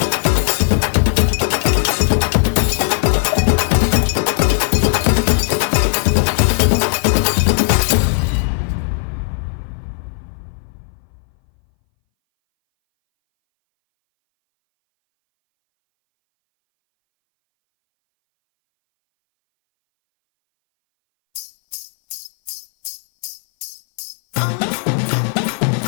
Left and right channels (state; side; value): silent; right; 62 dB below the other